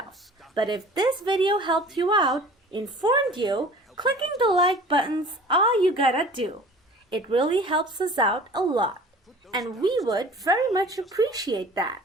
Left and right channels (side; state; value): both; normal; correlation 0.45